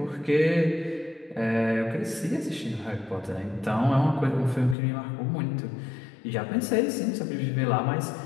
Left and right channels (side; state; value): right; drops out; at 4.8 s